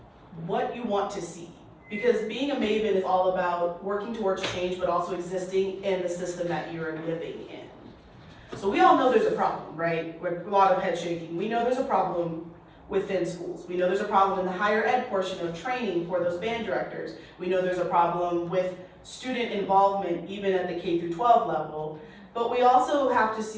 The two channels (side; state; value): both; identical; correlation 1.00